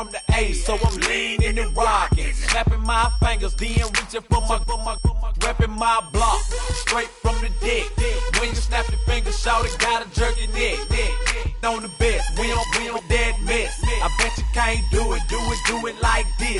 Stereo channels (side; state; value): both; identical; correlation 1.00